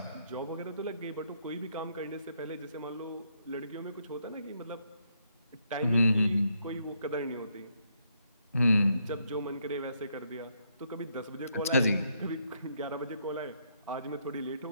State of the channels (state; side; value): inverted; both; correlation -0.75